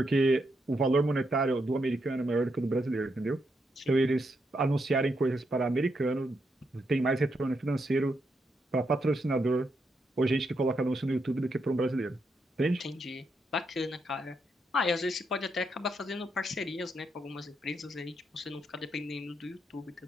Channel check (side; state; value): both; normal; correlation 0.80